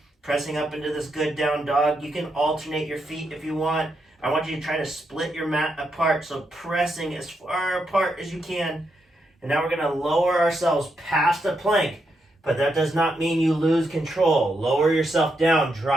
Pressing up into this good down dog. You can alternate your feet if you want. I want you to try to split your mat apart, so pressing as far apart as you can. And now we're going to lower ourselves past a plank, but that does not mean you lose control. Lower yourself down,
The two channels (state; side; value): normal; both; correlation 0.82